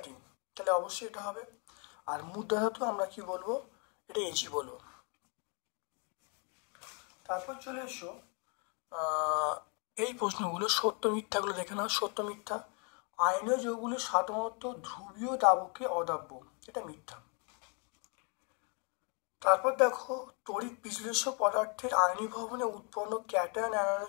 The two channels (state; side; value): quieter; right; 36.3 dB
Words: তাহলে অবশ্যই এটা হবে। আর মুদ্রা ধাতু আমরা কি বলবো? এটা এজি বলবো। তারপর চলে এসো এই প্রশ্নগুলো সত্য মিথ্যাগুলো দেখে নাও। সত্য মিথ্যা। আয়নীয় যৌগগুলো সাধারণত ধ্রুবীয় দাবকে অদাব্য, এটা মিথ্যা। তারপর দেখো তড়িৎ বিশ্লেষ্য পদার্থের আয়নীভবনে উৎপন্ন ক্যাটায়ন